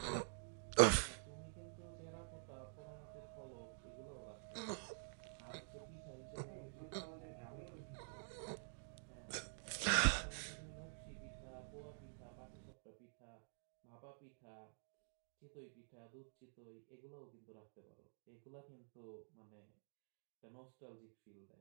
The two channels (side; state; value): left; silent; digital silence